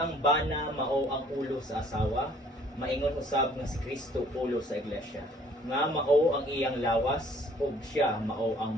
ang bana mao ang ulo sa asawa, maingon usab nga si Kristo ulo sa iglesia. Nga mao ang iyang lawas, ug siya mao ang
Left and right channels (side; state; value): both; normal; correlation 0.57